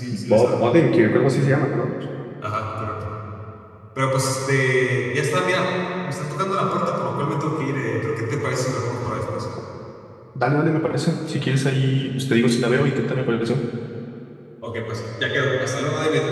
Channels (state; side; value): identical; both; correlation 1.00